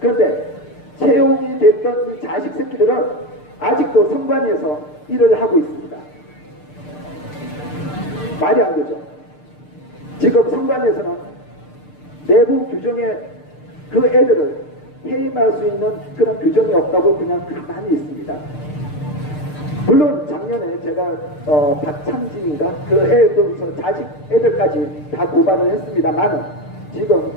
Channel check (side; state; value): right; late; 6.7 ms